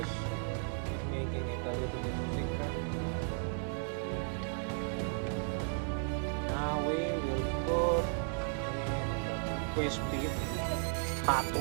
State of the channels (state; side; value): silent; left; 54 dB below the other